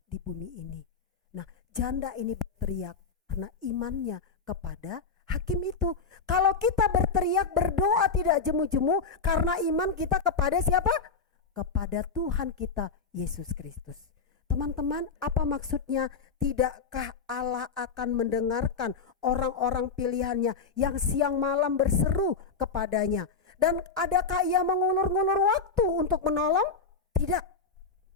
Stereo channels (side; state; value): right; quieter; 5.0 dB